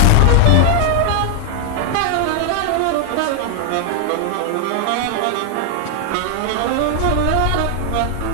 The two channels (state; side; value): different; both; correlation 0.00